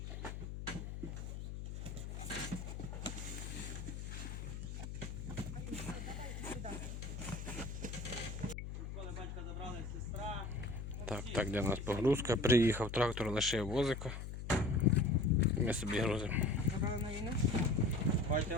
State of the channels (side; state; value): left; noise; hum, 7 dB below the sound